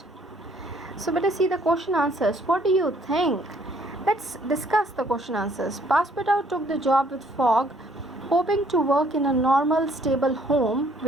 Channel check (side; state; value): both; normal; correlation 0.63